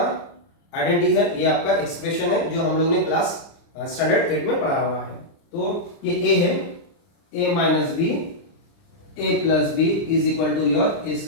आइडेंटिटी है, ये आपका एक्सप्रेशन है जो हम लोग ने क्लास स्टैंडर्ड 8 में पढ़ा हुआ है। तो ये a है, a minus b a plus b is equal to your a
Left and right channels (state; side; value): late; right; 29 ms